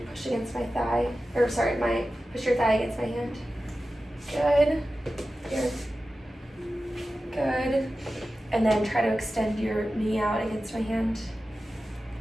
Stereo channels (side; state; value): both; normal; correlation 0.94